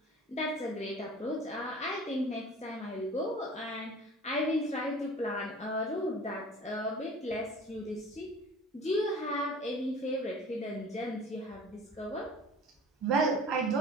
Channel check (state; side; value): normal; both; correlation 0.43